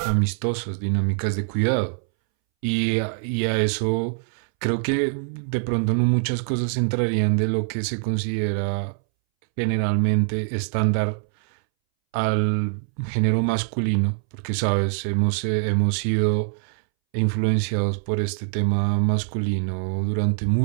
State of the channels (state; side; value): silent; left; 63 dB below the other